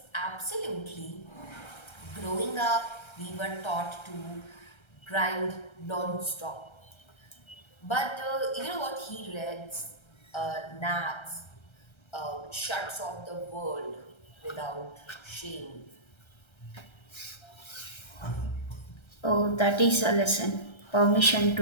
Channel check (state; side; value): late; right; 1.3 ms